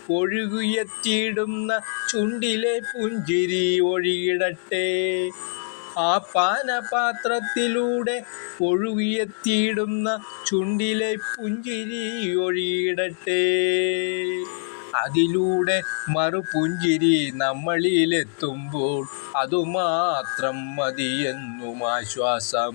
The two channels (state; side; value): silent; right; digital silence